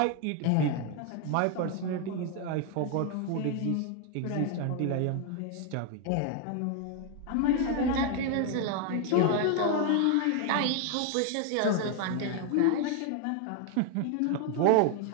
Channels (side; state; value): both; different; correlation 0.01